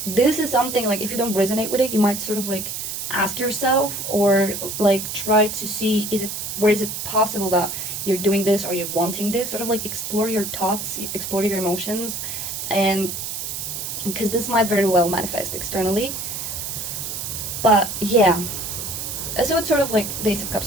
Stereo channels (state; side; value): noise; right; hiss, 5 dB below the sound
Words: this is something, like, if you don't resonate with it, you might sort of like ask yourself, or like try to see, where is it possible that you're doing this or you're wanting this, sort of like explore your thoughts, explore your emotions, and because this might very well manifest externally. But yeah, so it's sort of like the Ace of